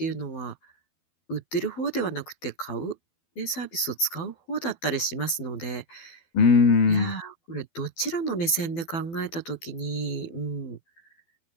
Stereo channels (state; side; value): late; right; 12 ms